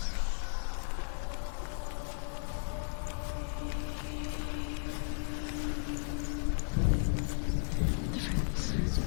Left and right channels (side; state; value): right; silent; 55 dB below the other